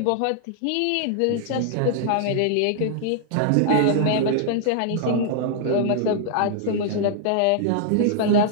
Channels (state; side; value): different; both; correlation -0.01